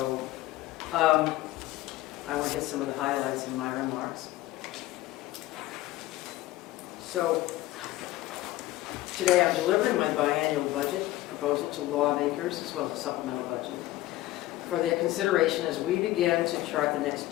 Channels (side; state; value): right; quieter; 16.6 dB